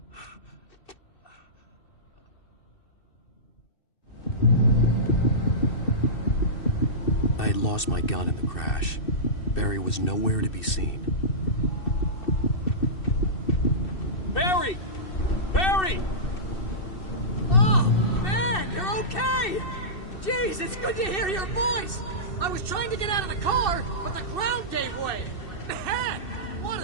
I had lost my gun in the crash. Barry was nowhere to be seen. Barry! Barry! Oh, man, you're okay! Jeez, it's good to hear your voice! I was trying to get out of the car, but the ground gave way! Man, what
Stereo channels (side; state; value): right; late; 2.6 ms